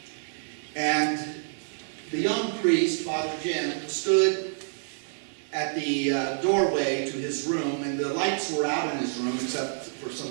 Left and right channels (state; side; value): silent; left; digital silence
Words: And the young priest, Father Jim, stood at the doorway to his room, and the lights were out in his room except for